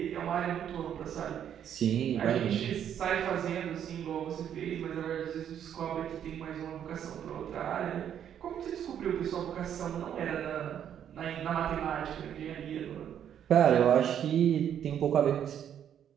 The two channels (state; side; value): quieter; left; 9.4 dB